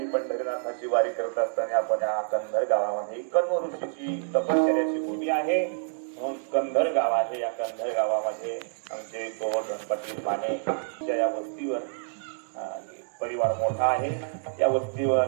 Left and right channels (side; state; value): left; silent; digital silence